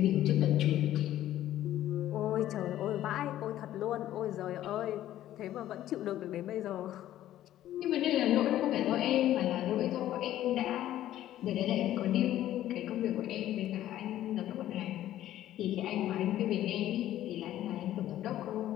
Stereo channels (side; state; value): right; quieter; 13.0 dB